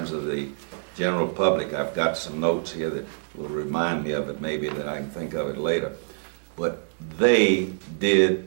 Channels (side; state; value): left; silent; digital silence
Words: of the general public. I've got some notes here that will remind me of it, maybe that I can think of it later. But they did